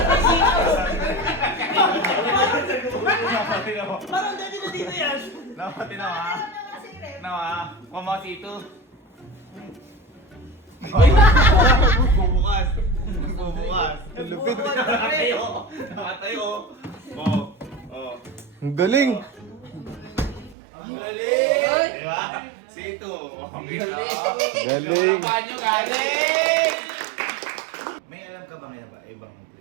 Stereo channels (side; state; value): left; drops out; at 20.6 s